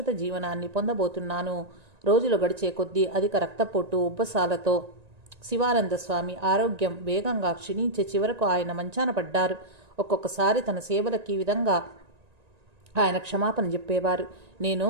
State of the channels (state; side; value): late; left; 1.9 ms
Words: జీవనాన్ని పొందబోతున్నాను. రోజులు గడిచే కొద్దీ అధిక రక్తపోటు ఉబ్బసాలతో శివానంద స్వామి ఆరోగ్యం వేగంగా క్షీణించే చివరకు ఆయన మంచాన పడ్డారు. ఒక్కొక్కసారి తన సేవలకి ఈ విధంగా ఆయన క్షమాపణ చెప్పేవారు. నేను